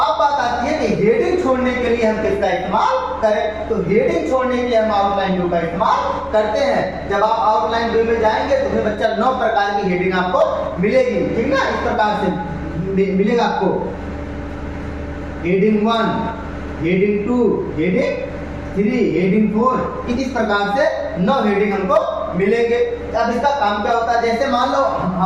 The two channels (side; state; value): both; identical; correlation 1.00